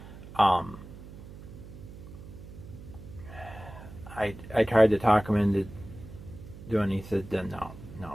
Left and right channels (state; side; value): noise; right; hum, 15 dB below the sound